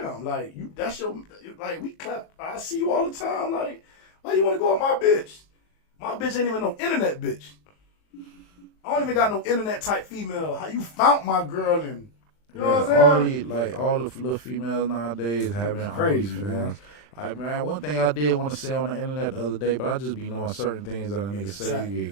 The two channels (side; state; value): right; late; 39 ms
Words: like you. That's your like we clap. I see you all the time. Like why you want to go with my bitch? My bitch ain't even no internet bitch. I don't even got no internet type female. How you found my girl and you know what I'm saying? All the little females nowadays having crazy, man. Man, one thing I did want to say on the internet the other day, but I just be knowing certain things that a nigga say you